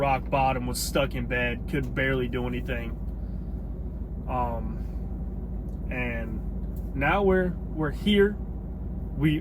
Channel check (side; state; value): both; identical; correlation 1.00